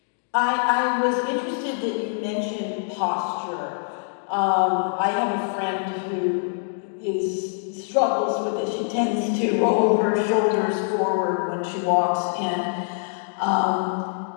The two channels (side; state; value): right; silent; digital silence